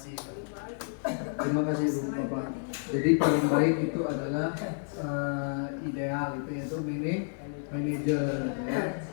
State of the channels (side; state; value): right; silent; digital silence